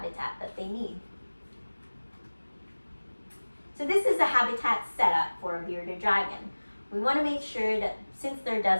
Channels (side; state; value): both; inverted; correlation -1.00